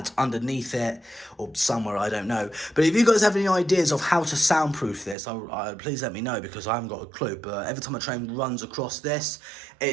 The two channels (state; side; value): drops out; left; at 5.2 s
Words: underneath it or somewhere, I don't know. But if you guys have any ideas of how to soundproof this, please let me know, because I haven't got a clue. But every time a train runs across this,